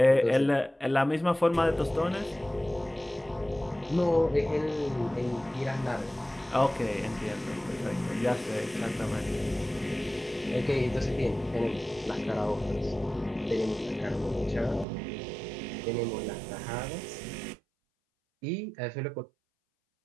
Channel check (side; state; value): left; drops out; at 14.9 s